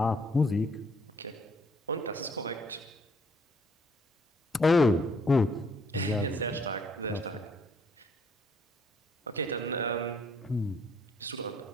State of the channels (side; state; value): both; normal; correlation 0.65